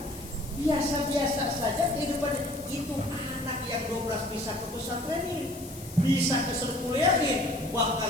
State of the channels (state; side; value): noise; left; hiss, 16 dB below the sound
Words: Biasa-biasa saja kehidupan itu. Anak yang 12 bisa ke pesantren ini, bisa ke sekuliahin,